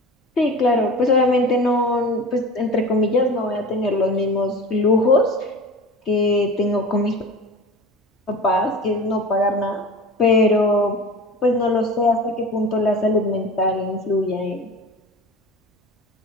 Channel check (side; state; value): both; normal; correlation 0.35